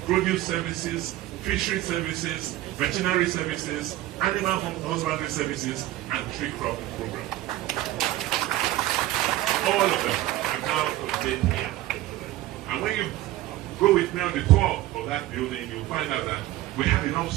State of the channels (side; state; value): left; quieter; 15.5 dB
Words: Produce Services, Fishery Services, Veterinary Services, Animal Husbandry Services, and Tree Crop Program. All of them are now contained here. And when you go with me on the tour of that building, you'll find out that we have enough